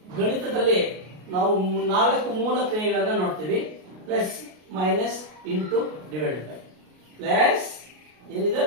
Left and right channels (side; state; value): left; late; 33 ms